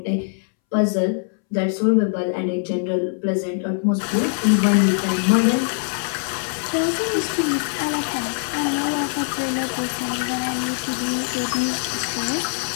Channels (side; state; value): right; silent; 64 dB below the other